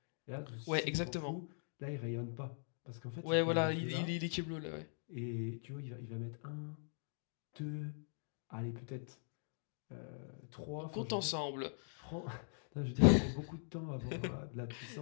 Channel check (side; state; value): right; silent; digital silence